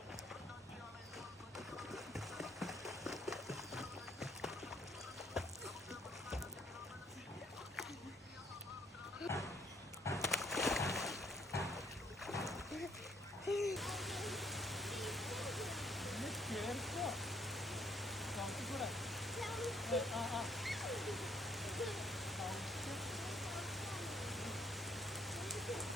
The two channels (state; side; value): normal; both; correlation 0.65